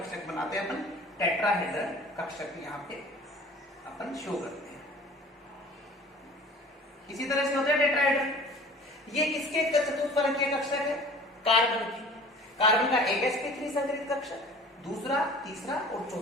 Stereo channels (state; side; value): normal; both; correlation 0.45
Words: बनाते हैं अपन, टेट्राहेड्रल कक्षक यहाँ पे अपन शो करते हैं। इसी तरह से होता है टेट्राहेड्रल। ये किसके चतुष्फलकीय कक्षक है, कार्बन की। कार्बन का एक sp3 संकरित कक्षक, दूसरा, तीसरा और